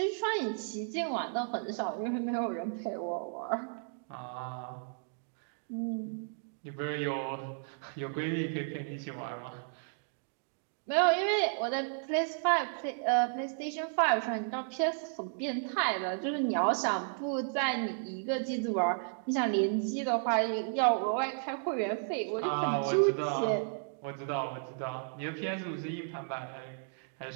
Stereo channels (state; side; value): silent; left; digital silence